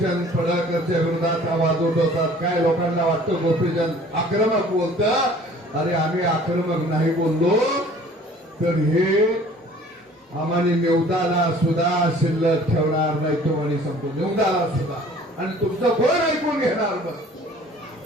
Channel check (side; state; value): both; normal; correlation 0.51